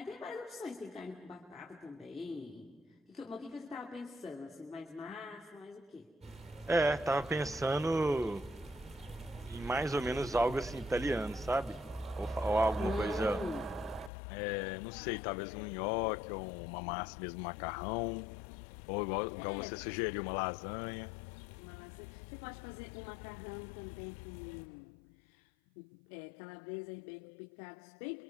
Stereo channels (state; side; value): drops out; right; at 14.1 s